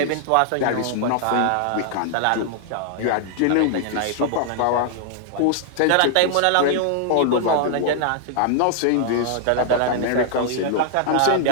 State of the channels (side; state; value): both; different; correlation 0.00